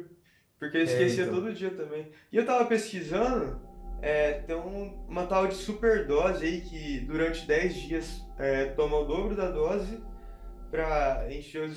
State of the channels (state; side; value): identical; both; correlation 1.00